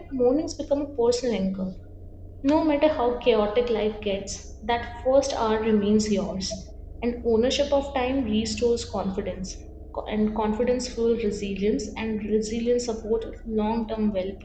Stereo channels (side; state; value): both; identical; correlation 1.00